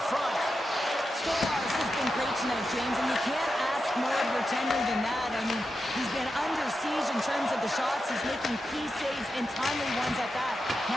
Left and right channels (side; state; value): both; normal; correlation 0.89